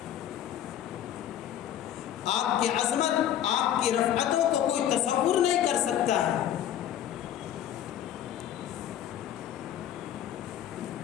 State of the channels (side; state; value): right; quieter; 10.9 dB